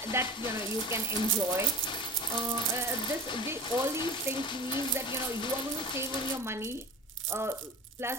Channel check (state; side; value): normal; both; correlation 0.35